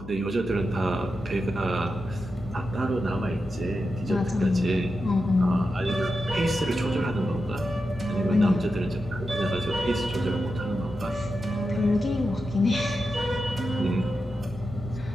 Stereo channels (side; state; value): left; noise; hum, 14 dB below the sound